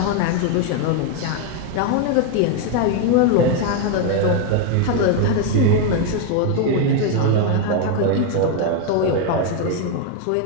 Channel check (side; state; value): both; different; correlation 0.01